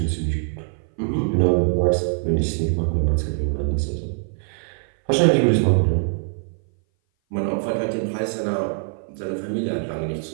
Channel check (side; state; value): left; silent; 58 dB below the other